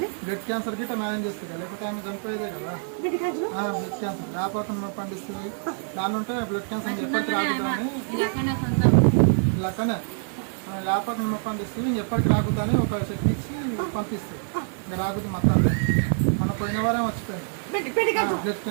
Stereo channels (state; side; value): silent; left; 57 dB below the other